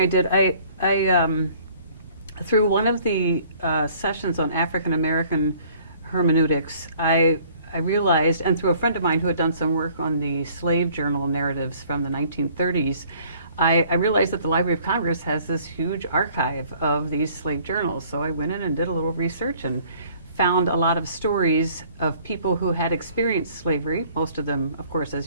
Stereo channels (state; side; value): inverted; both; correlation -0.56